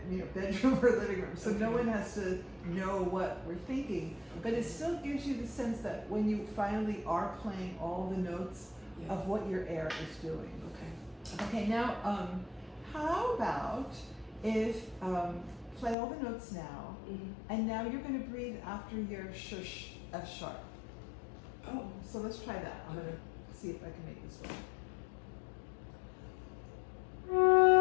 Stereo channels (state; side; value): drops out; right; at 16.0 s